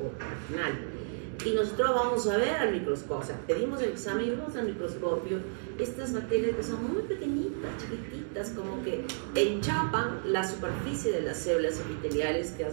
vaginal. Y nosotros vamos a ver al microscopio, o sea, pedimos el examen y vemos al microscopio estas bacterias que son muy pequeñitas, chiquititas, como que enchapan la superficie de las células epiteliales que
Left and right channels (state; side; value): silent; left; digital silence